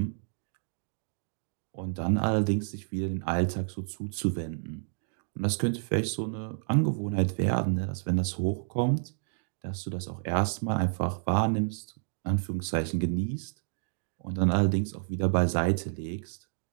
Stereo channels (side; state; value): left; silent; digital silence